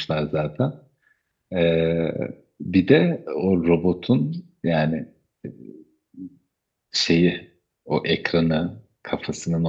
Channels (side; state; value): both; identical; correlation 1.00